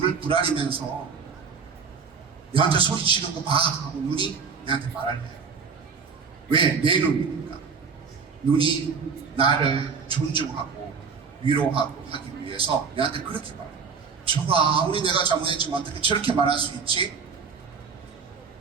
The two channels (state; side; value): quieter; left; 5.6 dB